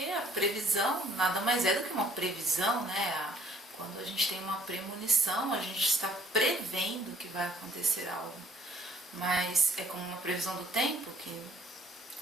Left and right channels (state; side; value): normal; both; correlation 0.60